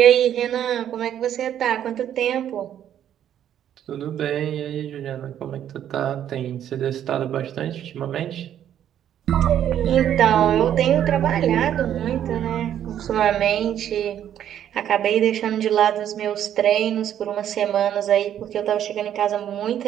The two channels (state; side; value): quieter; left; 10.4 dB